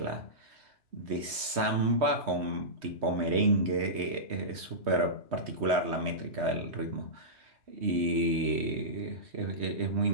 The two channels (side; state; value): left; late; 3.2 ms